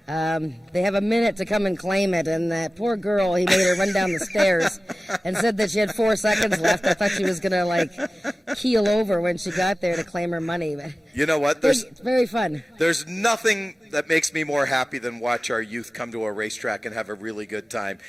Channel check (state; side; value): normal; both; correlation 0.97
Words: they have a minute to come and claim it, and that poor girl, he made her run down the stairs and said that she had 4 seconds left. I thought she was going to, keel over when she got there to claim her money. But you know what? it's very fun. There's nothing that makes me more happy than watch our youth come to a racetrack and have a really good time.